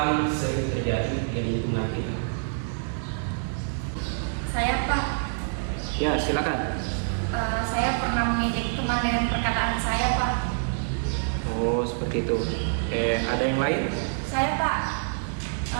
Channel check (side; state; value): left; silent; 61 dB below the other